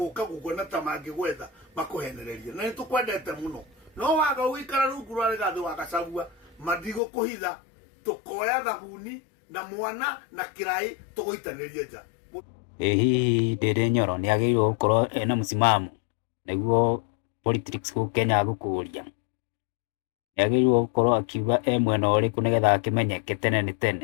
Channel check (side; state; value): right; drops out; at 7.0 s